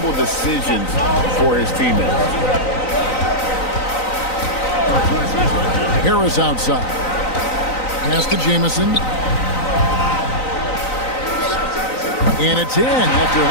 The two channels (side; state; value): right; late; 3.9 ms